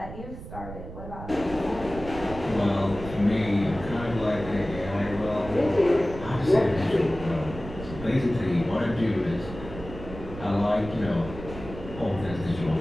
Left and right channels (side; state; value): right; noise; rumble, 12 dB below the sound